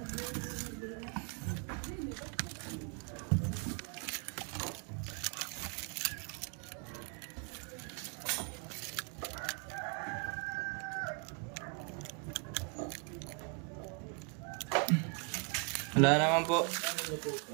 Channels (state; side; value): quieter; left; 34.3 dB